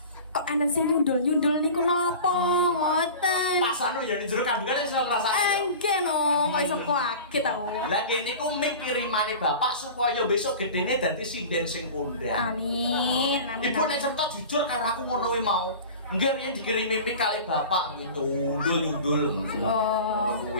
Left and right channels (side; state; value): both; inverted; correlation -0.37